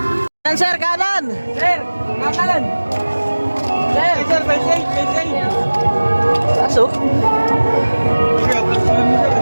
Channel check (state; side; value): inverted; both; correlation -1.00